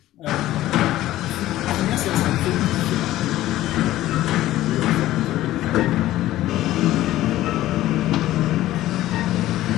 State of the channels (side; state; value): right; quieter; 14.9 dB